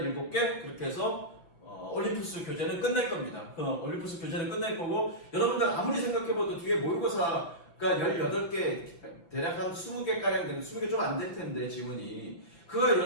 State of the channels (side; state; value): right; late; 5.9 ms